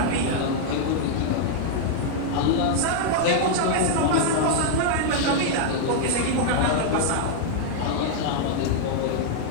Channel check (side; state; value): both; different; correlation -0.01